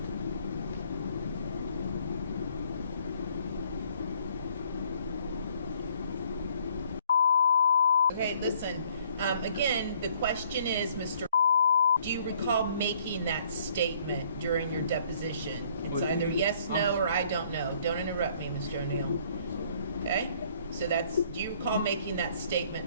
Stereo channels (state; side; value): inverted; both; correlation -0.62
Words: Okay, listen, again, the question is, Mr. Do you recall making that statement during your deposition? It's either yes, no, or I don't know. Don't interrupt me, Mr. O'Neal. Okay? So that's, do you recall making that